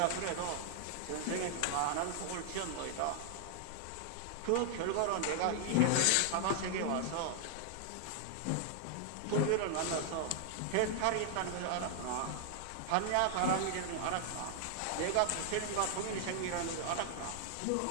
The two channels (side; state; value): both; different; correlation 0.00